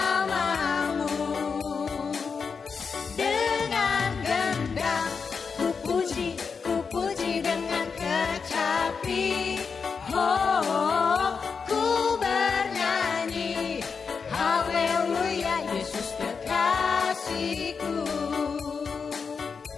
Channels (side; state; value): right; quieter; 5.5 dB